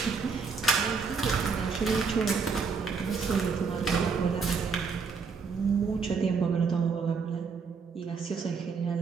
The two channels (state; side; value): quieter; left; 5.2 dB